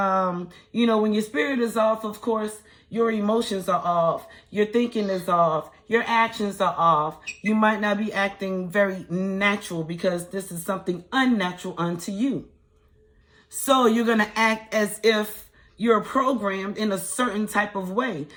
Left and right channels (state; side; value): identical; both; correlation 1.00